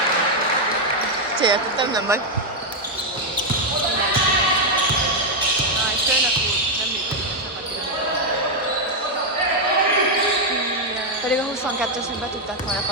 Céltottam, nem vagy. Aj, főnök úr, nem működik a csapatira. Pedig a 22-esnek be tudták volna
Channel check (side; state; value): both; normal; correlation 0.01